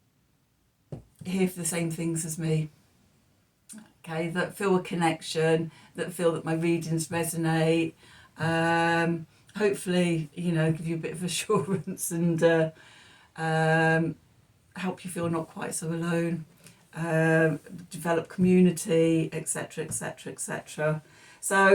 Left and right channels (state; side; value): identical; both; correlation 1.00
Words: here for the same things as me. Okay, that feel a connection, that feel that my readings resonate. Hopefully, you know, give you a bit of assurance and help you feel not quite so alone. Develop community, etc., etc., etc.